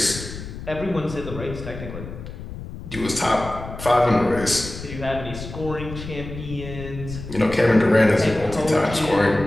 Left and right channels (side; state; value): left; noise; rumble, 10 dB below the sound